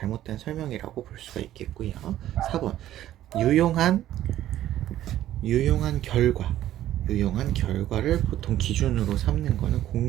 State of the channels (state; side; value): quieter; left; 12.9 dB